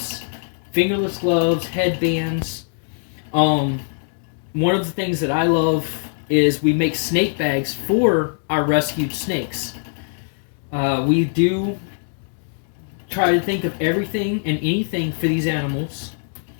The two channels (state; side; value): silent; right; digital silence